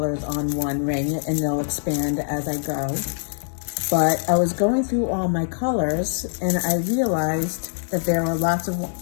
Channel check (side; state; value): right; silent; 63 dB below the other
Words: on one ring, and they'll expand as I go. But I was going through all my colors, and I realized that there are lots